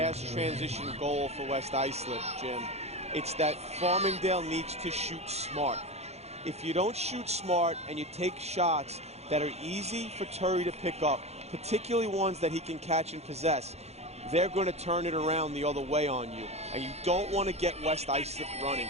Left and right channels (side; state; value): left; late; 0.31 ms